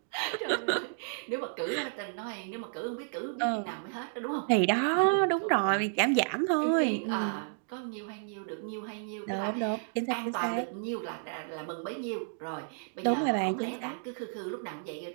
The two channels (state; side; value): silent; left; digital silence